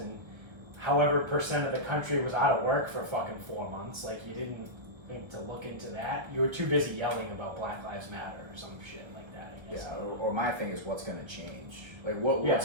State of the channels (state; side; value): late; left; 1.1 ms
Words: however percent of the country was out of work for fucking 4 months. Like, you didn't think to look into that. You were too busy yelling about Black Lives Matter or some shit like that, I guess. Yeah. Or my thing is, what's going to change? Like,